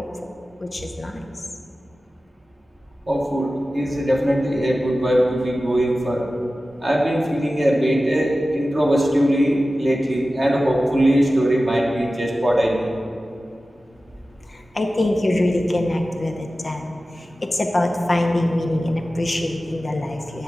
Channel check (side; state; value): both; normal; correlation 0.95